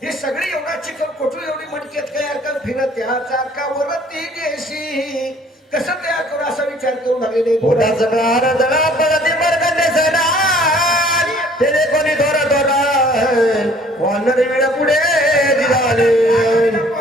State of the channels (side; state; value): both; normal; correlation 0.56